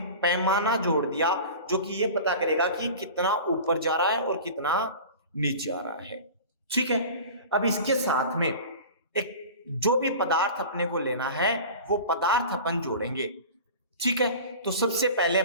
पैमाना जोड़ दिया जो कि ये पता करेगा कि कितना ऊपर जा रहा है और कितना नीचे आ रहा है, ठीक है। अब इसके साथ में एक जो भी पदार्थ अपने को लेना है वो पदार्थ अपन जोड़ेंगे, ठीक है। तो सबसे पहले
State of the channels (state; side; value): inverted; both; correlation -0.37